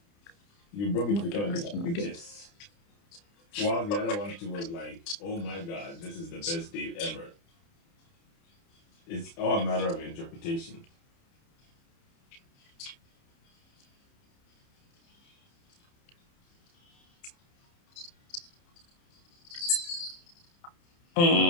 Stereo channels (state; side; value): late; right; 30 ms